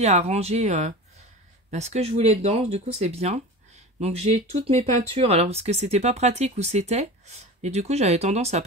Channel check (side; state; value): both; normal; correlation 0.32